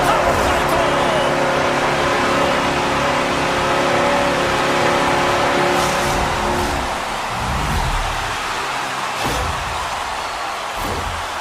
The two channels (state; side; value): identical; both; correlation 1.00